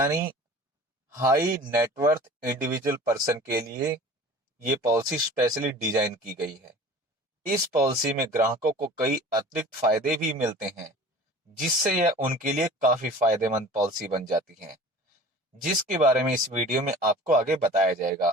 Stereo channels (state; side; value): normal; both; correlation 0.42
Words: हाई नेटवर्थ इंडिविजुअल पर्सन के लिए ये पॉलिसी स्पेशली डिजाइन की गई है। इस पॉलिसी में ग्राहकों को कई अतिरिक्त फायदे भी मिलते हैं, जिससे यह उनके लिए काफी फायदेमंद पॉलिसी बन जाती है, जिसके बारे में इस वीडियो में आपको आगे बताया जाएगा।